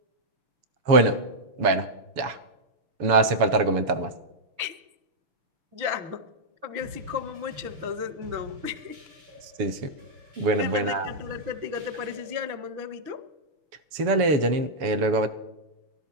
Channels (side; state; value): left; late; 7.0 ms